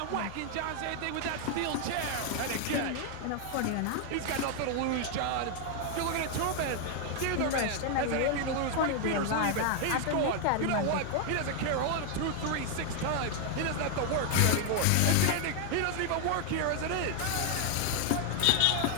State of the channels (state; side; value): different; both; correlation 0.01